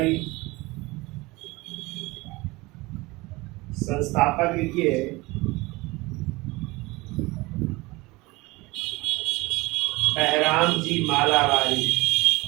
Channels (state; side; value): quieter; left; 22.4 dB